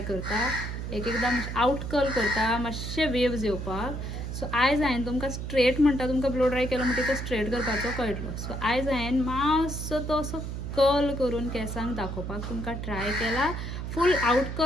करता, एकदां आउट कर्ल करता, मातशे वेव्स येवपाक. सो आयज हांवें तुमकां स्ट्रेट म्हणटा, तुमकां ब्लो ड्राय केलो म्हणटा तो स्ट्रेट करपाचो कळटलो. सो आयज हांवें मातसो तो असो कर्ल करून केंसांक दाखोवपाक तुमकां ट्राय केला. फूल आउट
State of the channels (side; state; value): right; noise; hum, 5 dB below the sound